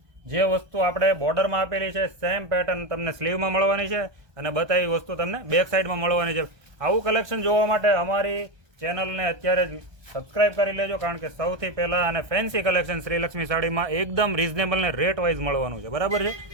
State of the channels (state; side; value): late; left; 1.2 ms